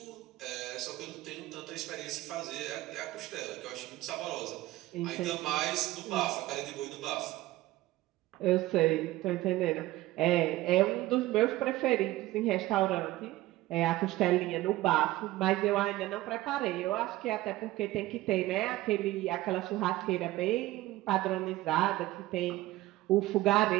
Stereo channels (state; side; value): quieter; left; 17.2 dB